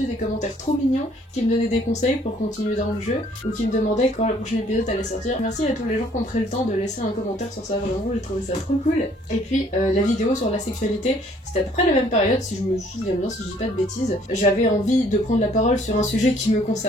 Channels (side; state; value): both; normal; correlation 0.61